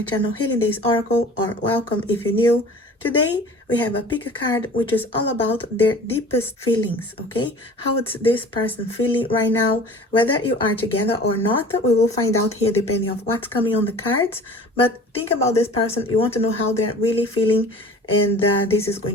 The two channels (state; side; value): normal; both; correlation 0.43